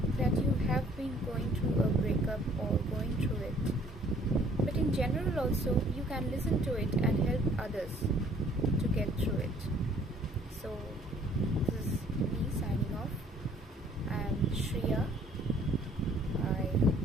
that you have been going through a breakup or going through it, but in general also you can listen to it and help others to get through it. So this is me signing off. I am Shreya. I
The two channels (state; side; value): normal; both; correlation 0.59